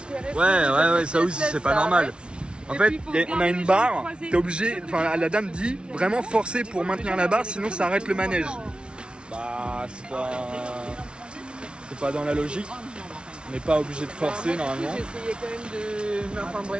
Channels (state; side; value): late; left; 0.057 ms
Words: Ouais, ça aussi, c'est pas normal. En Et fait, puis, faut on a garder une les barre, jambes croisées. t'es obligé, enfin la dame dit, vraiment forcer pour maintenir la barre, sinon ça arrête le manège. Bah, c'est pas dans la logique. On n'est pas obligé de forcer normalement. J'ai essayé quand même de... Enfin